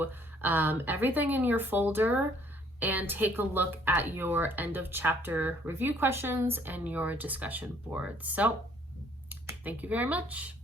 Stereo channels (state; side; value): normal; both; correlation 0.62